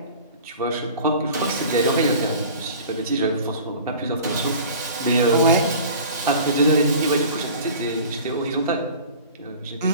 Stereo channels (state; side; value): inverted; both; correlation -0.42